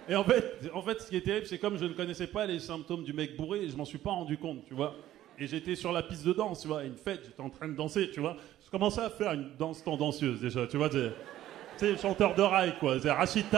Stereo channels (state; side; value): quieter; left; 13.4 dB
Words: en fait, ce qui est terrible, c'est comme je ne connaissais pas les symptômes du mec bourré, et je m'en suis pas rendu compte, tu vois. Et j'étais sur la piste de danse, tu vois, à une fête, j'étais en train de danser, tu vois. Je commençais à faire une danse tendancieuse, déjà, tu vois. Tu sais, chanteur de rail, quoi. C'est